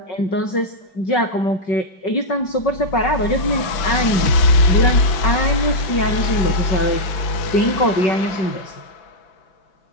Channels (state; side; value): late; right; 5.9 ms